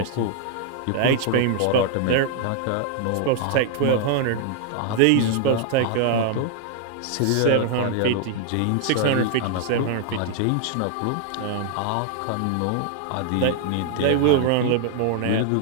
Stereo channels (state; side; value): different; both; correlation 0.00